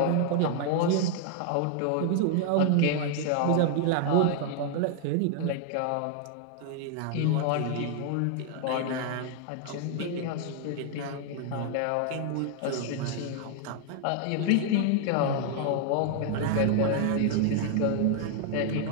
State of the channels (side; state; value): both; different; correlation 0.00